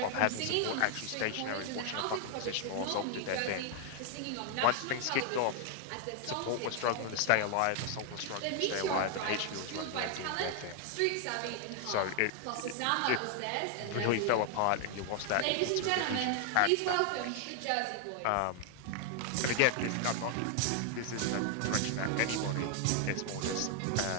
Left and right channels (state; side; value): different; both; correlation 0.00